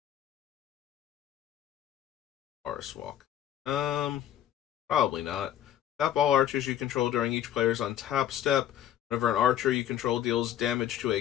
Forest Walk. Probably not. Tap all archers you control during each player's untap step. Whenever an archer you control deals damage to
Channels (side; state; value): right; quieter; 11.1 dB